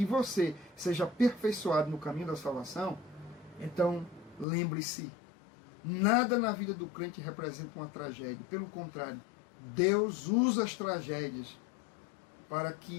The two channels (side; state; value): right; drops out; at 4.5 s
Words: você seja aperfeiçoado no caminho da salvação, Então, lembre-se, nada na vida do crente representa uma tragédia. Pelo contrário, Deus usa as tragédias para